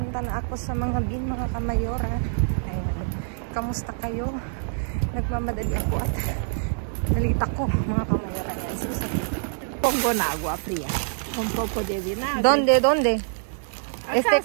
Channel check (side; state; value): left; silent; 61 dB below the other